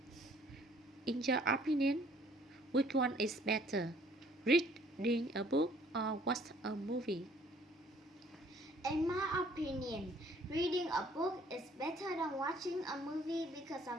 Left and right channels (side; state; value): both; normal; correlation 0.59